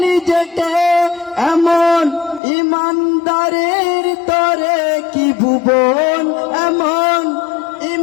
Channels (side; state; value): right; drops out; at 2.4 s